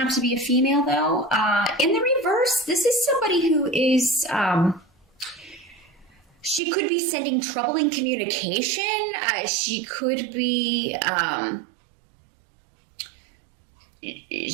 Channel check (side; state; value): left; drops out; at 6.6 s